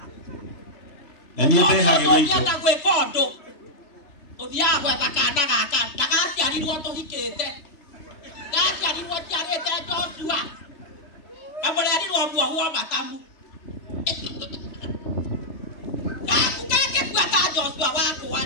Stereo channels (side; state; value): right; late; 3.4 ms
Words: Nani hage weito. Ndio gwe kondo. Othia gwa bakana gaka. Takati ari woto hikete. Takati ari woto arete Joshua. Amore ari wo huo matamu. Kakukake kwata Joshua wako